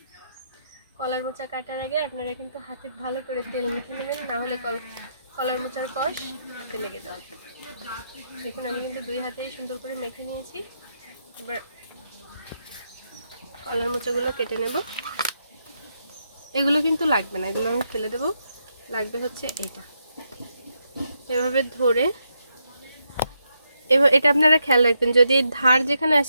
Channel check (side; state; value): both; inverted; correlation -0.81